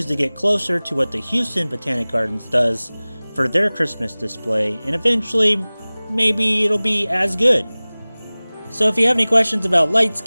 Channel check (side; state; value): both; inverted; correlation -1.00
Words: to get closer to what the Houston Botanic Gardens does for their Christmas display, and eventually maybe it'll be as good. So if you have any questions about